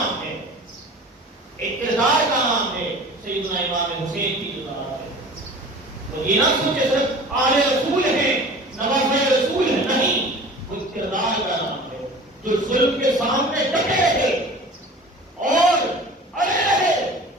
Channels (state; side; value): normal; both; correlation 0.41